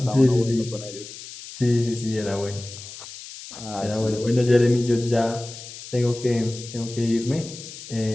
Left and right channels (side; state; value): left; noise; hiss, 14 dB below the sound